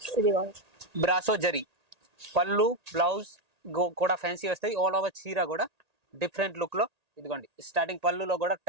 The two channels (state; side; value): late; left; 1.8 ms